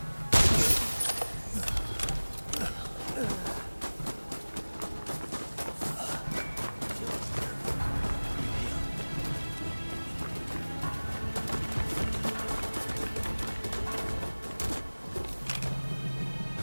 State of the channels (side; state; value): both; inverted; correlation -1.00